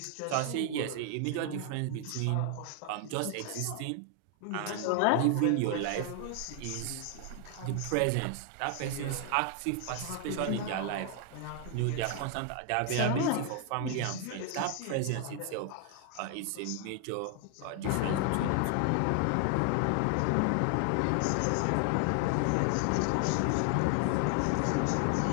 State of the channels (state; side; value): different; both; correlation 0.00